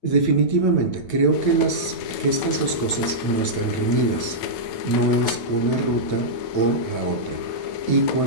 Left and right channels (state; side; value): late; right; 9.2 ms